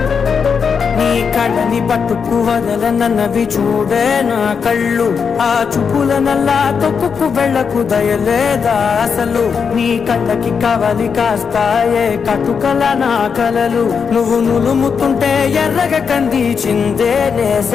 కళ్ళని పట్టుకు వదలనన్నవి చూడే నా కళ్ళు, ఆ చూపులనల్లా తొక్కుకు వెళ్ళకు దయలేదా అసలు. నీ కళ్ళకి కవలి కాస్తాయే కటుకల నా కలలు, నువ్వు నులుముతుంటే ఎర్రగ కంది చిందే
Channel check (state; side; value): quieter; right; 6.1 dB